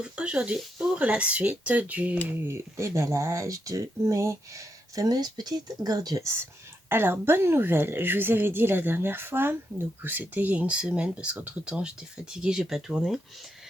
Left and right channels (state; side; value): normal; both; correlation 0.82